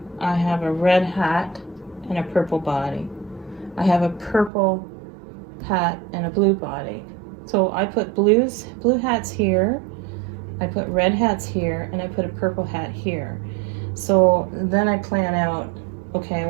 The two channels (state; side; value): drops out; left; at 4.5 s